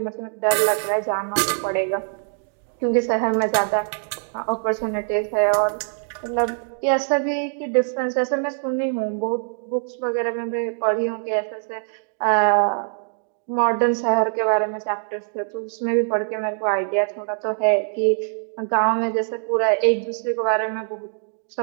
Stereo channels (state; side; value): silent; left; digital silence